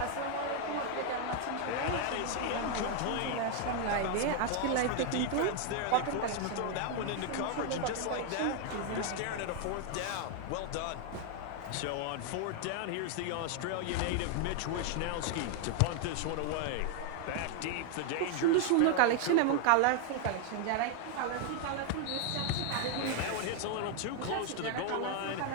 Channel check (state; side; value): different; both; correlation 0.00